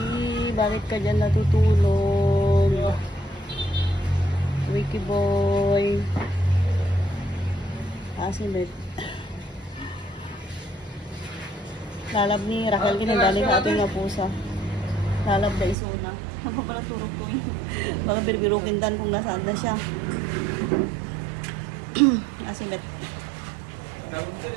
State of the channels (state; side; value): drops out; left; at 15.8 s